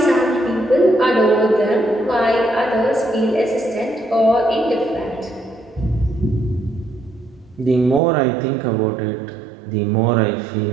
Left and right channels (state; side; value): drops out; left; at 8.0 s